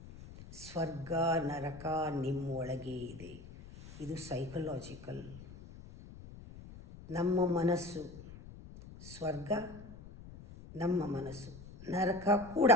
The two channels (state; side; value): noise; left; rumble, 16 dB below the sound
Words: ಸ್ವರ್ಗ ನರಕ ನಿಮ್ಮ ಒಳಗೆ ಇದೆ. ಇದು ಸೈಕಲಾಜಿಕಲ್. ನಮ್ಮ ಮನಸ್ಸು ಸ್ವರ್ಗ, ನಮ್ಮ ಮನಸ್ಸು ನರಕ ಕೂಡ.